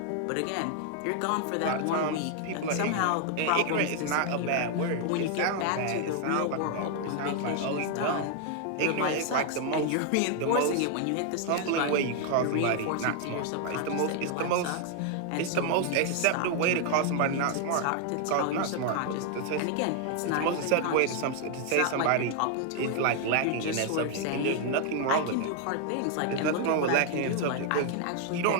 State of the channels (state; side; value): different; both; correlation 0.00